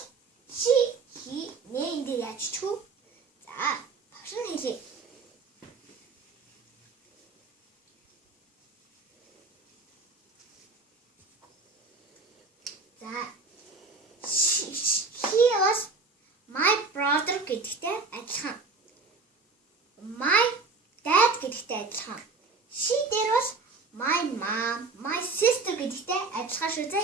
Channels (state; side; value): quieter; left; 4.0 dB